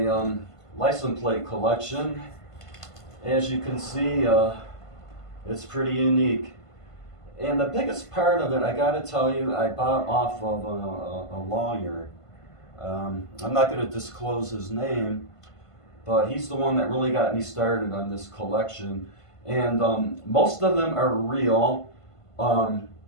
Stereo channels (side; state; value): right; late; 1.5 ms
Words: license plate collection. As you can see, it's pretty unique. And the biggest part of it, I gotta tell you, I bought off of a lawyer. I'm not going to disclose his name, but he's the one that really got me started on this collection. And most of them are real.